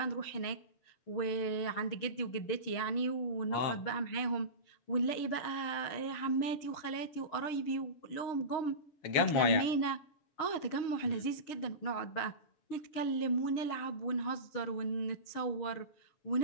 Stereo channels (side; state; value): right; late; 6.5 ms